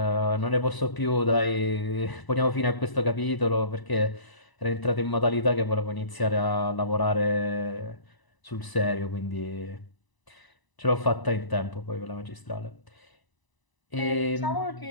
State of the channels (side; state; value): right; late; 1.0 ms